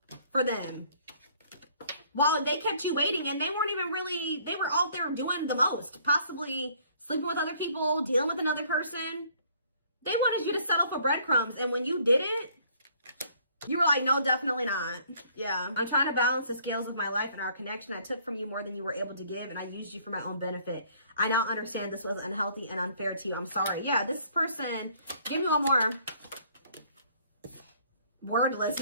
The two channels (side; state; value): both; inverted; correlation -0.60